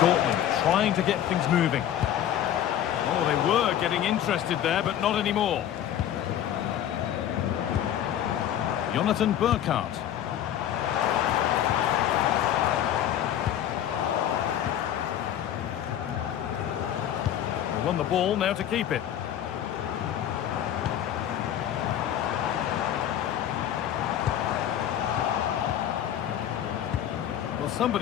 trying to get things moving. Oh, they were getting interested there, but not anymore. Jonathan Burkhardt. They won the ball, now to keep it. Well,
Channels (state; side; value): quieter; right; 10.8 dB